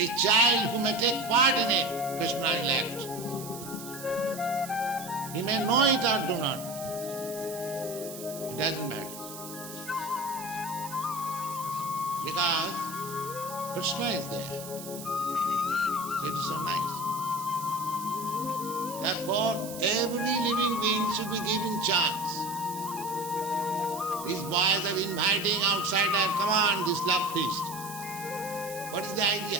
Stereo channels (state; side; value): noise; right; hiss, 12 dB below the sound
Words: child who may take part in it, Krishna will act. He may know it or do not. It doesn't matter. Because Krishna is there. So it is so nice. Therefore, every living being should be given chance. These boys are inviting outsider, come on, this love feast. What is the